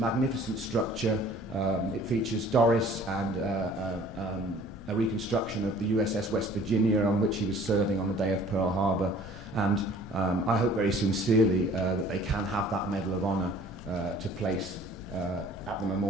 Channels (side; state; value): both; normal; correlation 0.51